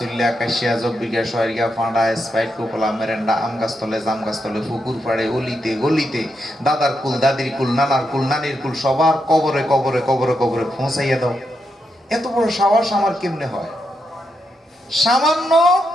কাশিয়া জব্বিকা শহরিয়া ফাঁড়া স্পাইট কোকলা মেরেন্ডা আম গাছতলে জাম গাছতলে পুকুর পাড়ে অলিতে গলিতে, দাদার কুল দাদির কুল নানার কুল নানির কুল সবার কবরে কবরে কবরে কবরে পৌঁছাইয়া দাও। এত বড় সাহস আমার কেমনে হয়? সামান্য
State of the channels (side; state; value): both; normal; correlation 0.83